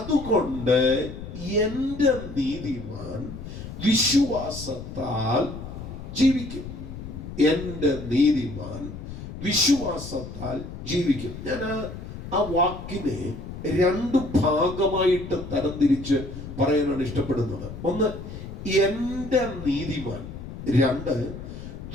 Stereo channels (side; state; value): left; noise; rumble, 10 dB below the sound